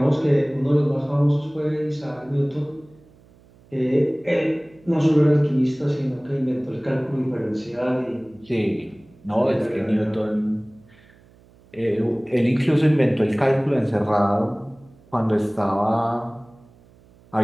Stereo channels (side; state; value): right; noise; hum, 28 dB below the sound